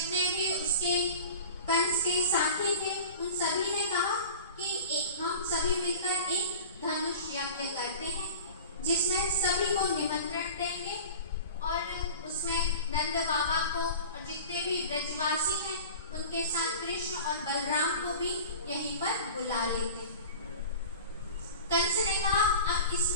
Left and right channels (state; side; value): inverted; both; correlation -0.38